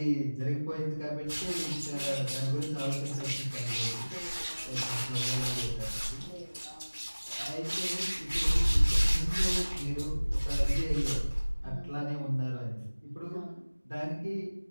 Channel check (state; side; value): inverted; both; correlation -1.00